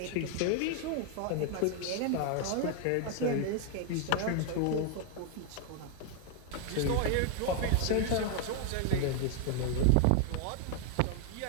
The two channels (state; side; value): different; both; correlation 0.00